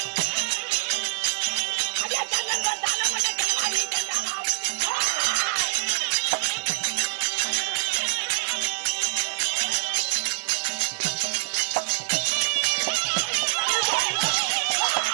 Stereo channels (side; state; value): left; silent; 61 dB below the other